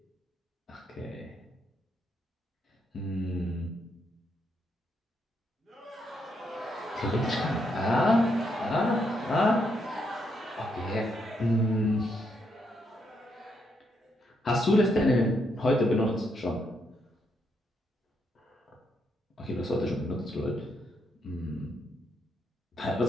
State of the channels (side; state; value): both; normal; correlation 0.78